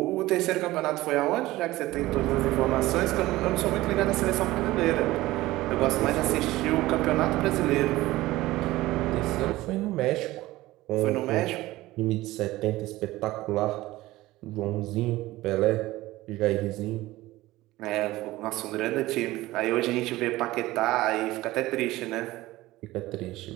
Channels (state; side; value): quieter; left; 17.8 dB